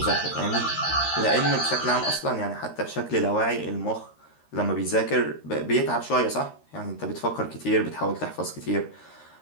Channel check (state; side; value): late; right; 13 ms